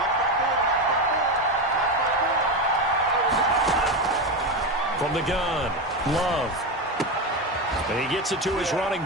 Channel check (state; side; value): normal; both; correlation 0.15